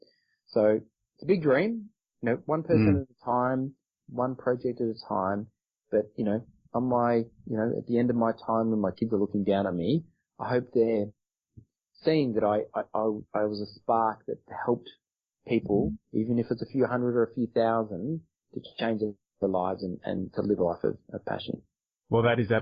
So it's a big dream, one person at a time, one project at a time. But, on my, at the end of my time when my kids are looking down at me, I hope they're seeing that I was a spark that helped people, even if it's a few hundred or a few thousand, to change their lives and to live a life of passion. Well, that is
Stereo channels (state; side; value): identical; both; correlation 1.00